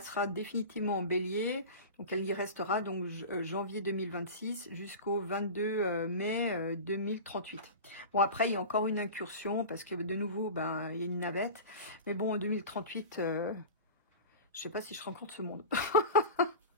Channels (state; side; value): inverted; both; correlation -0.31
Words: définitivement en bélier. Donc elle y restera donc janvier 2026 jusqu'au 22 mai 2038. Bon après, il y a encore une incursion parce que de nouveau, ben, il y a une navette. Mais bon, en 2038, je sais pas si je rencontre ce monde.